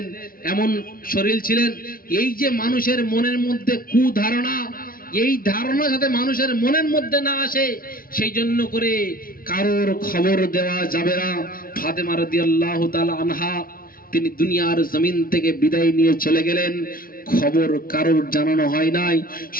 এমন শরীর ছিলেন। এই যে মানুষের মনের মধ্যে কুধারণা, এই ধারণা যাতে মানুষের মনের মধ্যে না আসে সেই জন্য করে কারোর খবর দেওয়া যাবে না। ফাতেমা রাদিয়াল্লাহু তাআলা আনহা তিনি দুনিয়ার জমিন থেকে বিদায় নিয়ে চলে গেলেন, খবর কারোর জানানো হয় নাই।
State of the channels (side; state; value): right; late; 0.42 ms